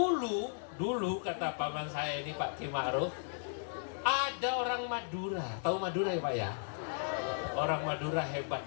kata paman saya ini Pak Ki Ma'ruf, ada orang Madura. Tahu Madura ya Pak ya? Orang Madura hebat,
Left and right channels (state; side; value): silent; right; digital silence